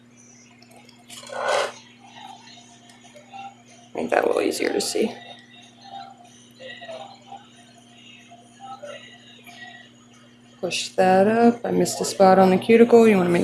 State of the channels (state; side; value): identical; both; correlation 1.00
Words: Make that a little easier to see. Push that up. I missed a spot on the cuticle. You want to